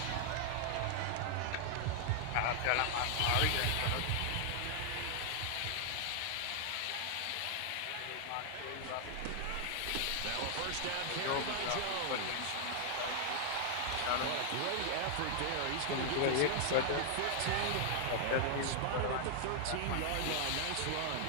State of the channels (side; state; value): both; different; correlation 0.00